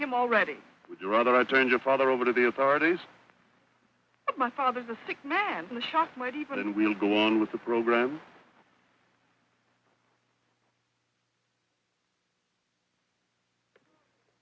already. Would you rather I turned your father over to the authorities? But my father's a sick man, and the shock might even... Then we'll go on with the program.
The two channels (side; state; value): both; identical; correlation 1.00